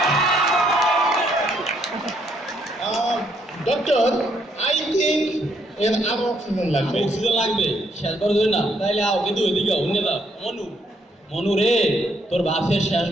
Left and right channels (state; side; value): normal; both; correlation 0.72